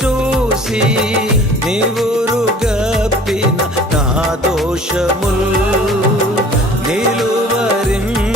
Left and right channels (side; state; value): both; normal; correlation 0.48